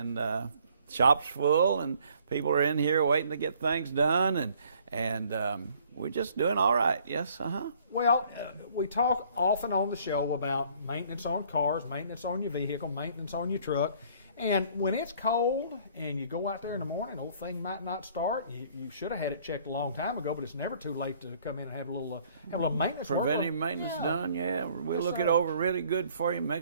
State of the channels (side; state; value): both; inverted; correlation -0.59